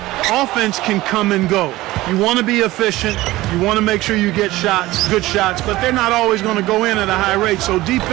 offense can come and go. You want to be efficient. You want to make sure you get shots, good shots, but they're not always going to go in at a high rate. So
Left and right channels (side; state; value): left; quieter; 17.9 dB